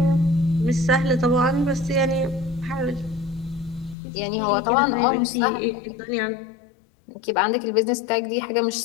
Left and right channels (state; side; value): drops out; right; at 4.0 s